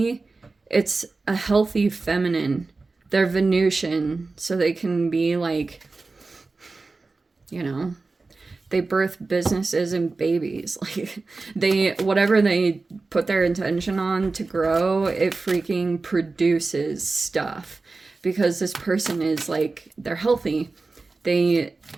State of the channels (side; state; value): left; quieter; 3.7 dB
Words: It's a healthy feminine. They're Venusian, so they can be like, you know, they birth businesses and babies. Like, they, whatever they put their intention on to grow, it freaking produces stuff. Because this person is like, they're healthy. They